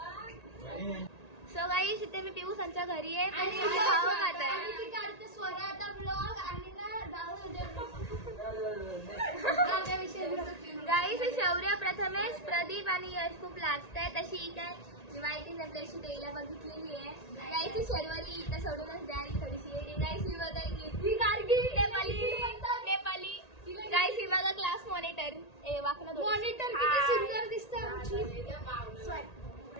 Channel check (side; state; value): right; late; 1.8 ms